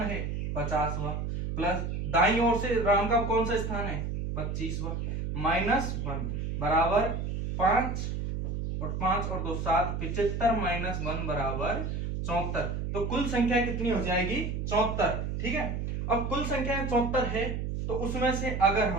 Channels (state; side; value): noise; right; hum, 3 dB below the sound